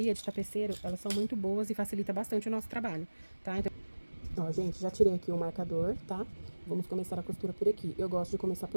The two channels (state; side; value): inverted; both; correlation -1.00